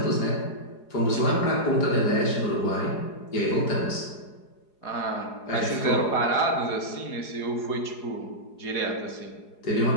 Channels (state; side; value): late; right; 4.8 ms